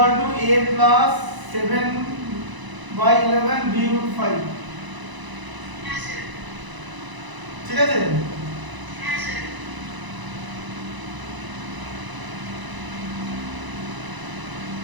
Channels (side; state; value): left; late; 1.0 ms